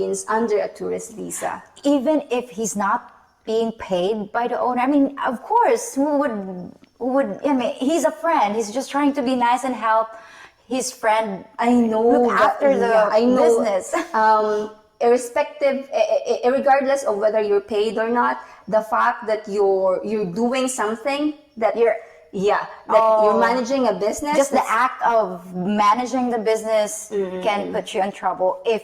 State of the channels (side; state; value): both; identical; correlation 1.00